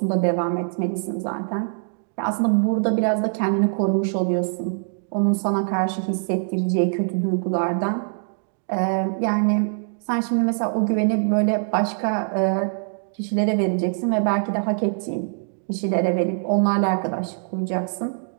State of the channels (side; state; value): left; silent; digital silence